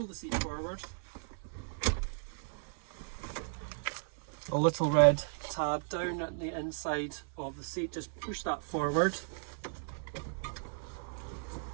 the seat forward. A little red tab down at the inside of the seat, just push that forward.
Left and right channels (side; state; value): left; silent; 54 dB below the other